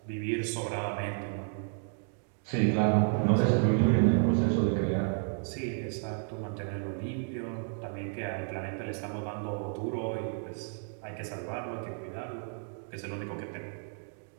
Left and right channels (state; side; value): silent; left; 56 dB below the other